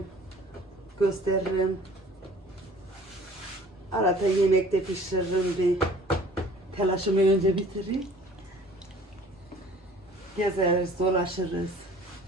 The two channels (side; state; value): both; normal; correlation 0.50